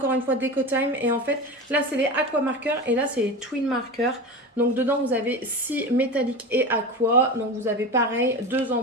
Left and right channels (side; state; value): both; normal; correlation 0.27